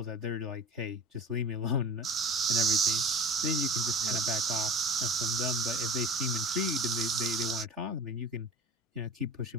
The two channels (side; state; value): both; normal; correlation 0.37